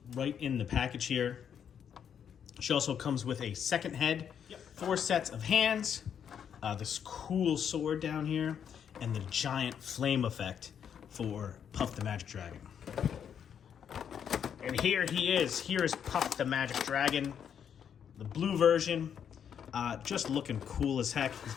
right in the package here. She also comes with a second head, 4 sets of hands, this cool sword down here, and the giant flame effect for Puff the Magic Dragon. And here he is. Here is Puff the Magic Dragon, the blue version. Just looking cool as heck. He's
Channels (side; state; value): right; quieter; 8.2 dB